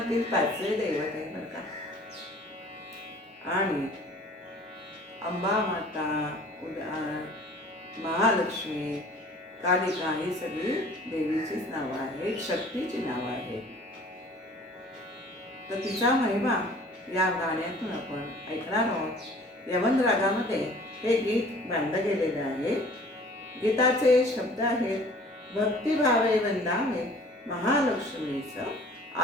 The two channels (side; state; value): both; normal; correlation 0.50